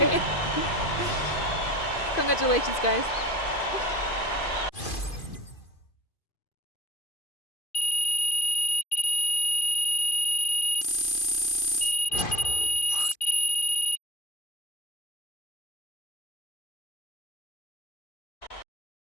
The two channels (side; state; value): right; late; 2.5 ms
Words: you. Congratulations, guys.